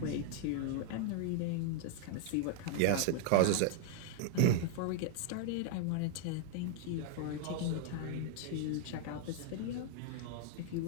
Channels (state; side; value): different; both; correlation 0.00